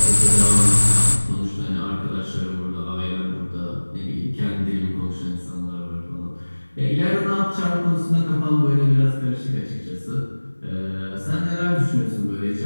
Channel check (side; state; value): both; inverted; correlation -1.00